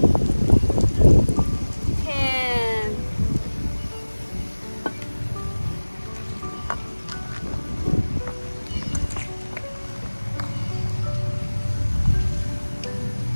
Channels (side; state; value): both; inverted; correlation -1.00